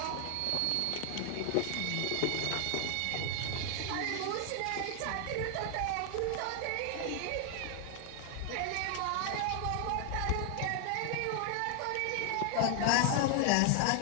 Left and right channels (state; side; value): different; both; correlation 0.00